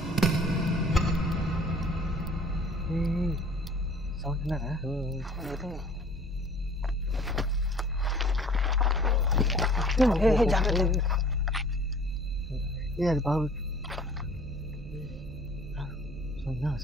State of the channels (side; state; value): both; normal; correlation 0.51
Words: సౌండ్ విన్నారా? అది బాగు